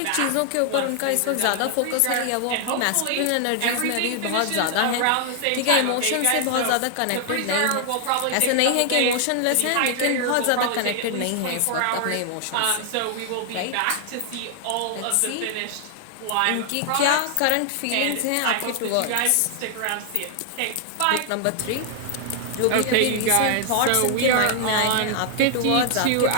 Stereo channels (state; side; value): different; both; correlation 0.00